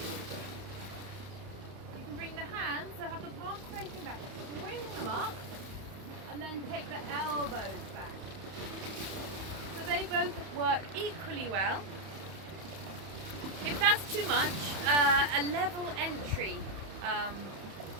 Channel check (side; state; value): left; late; 31 ms